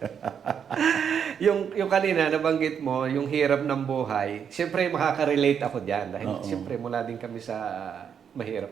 yung kanina, nabanggit mo, yung hirap ng buhay, siyempre makaka-relate ako dyan. Dahil siyempre mula din kami sa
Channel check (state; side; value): quieter; left; 7.7 dB